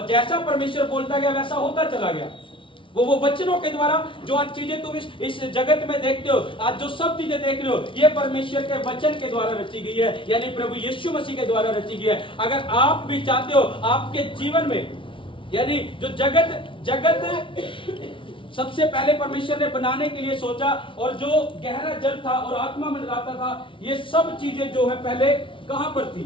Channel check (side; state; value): right; late; 0.25 ms